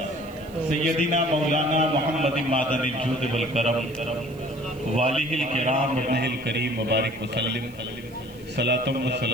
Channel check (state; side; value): noise; right; hiss, 26 dB below the sound